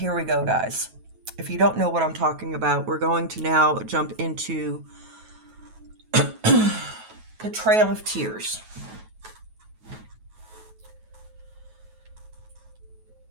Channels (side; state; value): left; late; 9.3 ms